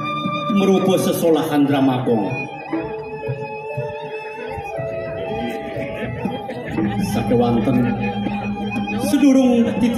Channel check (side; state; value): both; identical; correlation 1.00